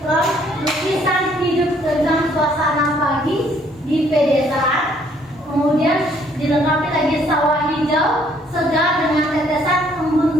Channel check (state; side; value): normal; both; correlation 0.64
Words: prop lukisan hidup tentang suasana pagi di pedesaan. Kemudian dilengkapi lagi sawah hijau segar dengan tetesan